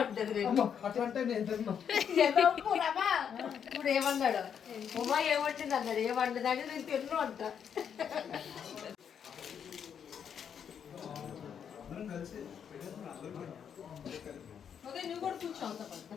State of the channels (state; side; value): quieter; right; 7.9 dB